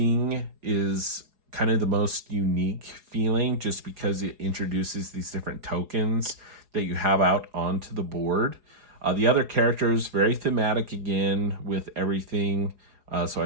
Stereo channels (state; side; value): late; left; 4.7 ms